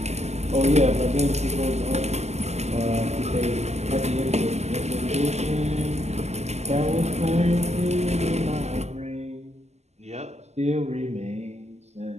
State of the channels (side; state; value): left; late; 0.32 ms